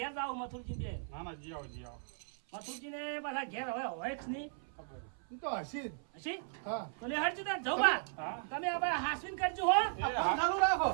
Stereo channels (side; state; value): left; silent; 53 dB below the other